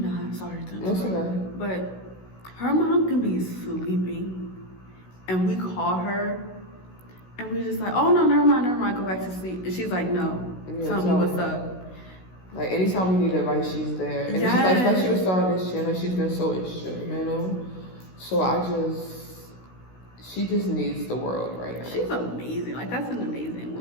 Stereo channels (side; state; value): right; late; 16 ms